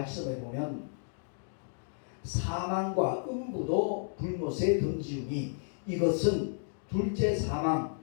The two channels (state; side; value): silent; right; digital silence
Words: 보면 사망과 음부도 불못에 던지우니 이것은 둘째 사망